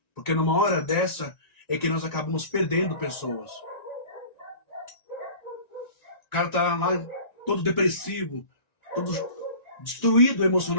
Porque numa hora dessa é que nós acabamos perdendo pessoas. O cara tá lá todo depressivo, todo destruído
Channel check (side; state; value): right; late; 1.9 ms